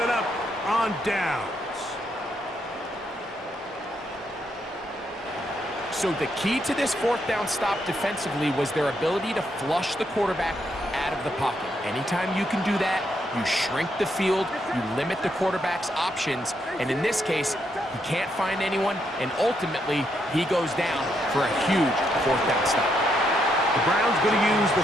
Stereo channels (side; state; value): both; normal; correlation 0.77